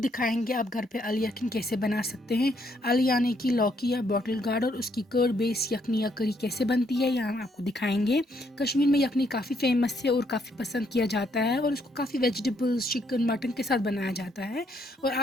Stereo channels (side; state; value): both; normal; correlation 0.72